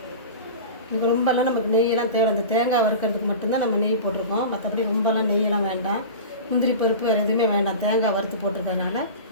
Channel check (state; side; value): inverted; both; correlation -0.32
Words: இது ரொம்பலாம் நமக்கு நெய்யெல்லாம் தேவை. அந்த தேங்காய் வறுக்கிறதுக்கு மட்டும்தான் நம்ம நெய் போட்டிருக்கோம். மற்றபடி ரொம்பலாம் நெய்யெல்லாம் வேண்டாம். முந்திரி பருப்பு வேறு எதுவுமே வேண்டாம். தேங்காய் வறுத்து போட்டிருக்கிறதுனால